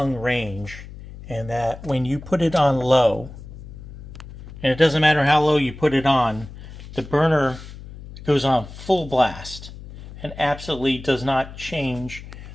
range and that when you put it on low, and it doesn't matter how low you put it on, the burner goes on full blast and absolutely does not change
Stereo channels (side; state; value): left; noise; hum, 14 dB below the sound